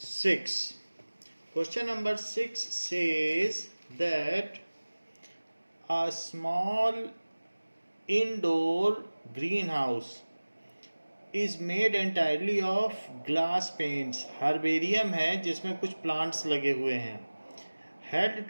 Question number 6 says that a small indoor greenhouse is made entirely of glass panes. Herbarium है जिसमें कुछ प्लांट्स लगे हुए हैं। Held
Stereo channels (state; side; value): inverted; both; correlation -1.00